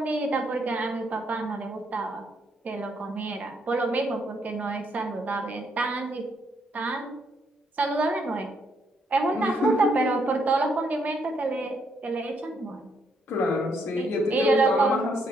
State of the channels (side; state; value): both; normal; correlation 0.73